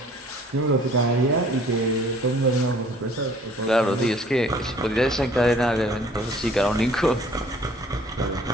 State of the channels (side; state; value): both; normal; correlation 0.55